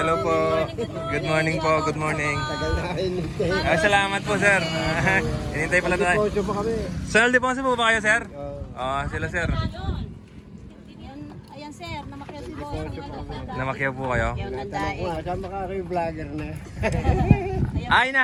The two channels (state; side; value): identical; both; correlation 1.00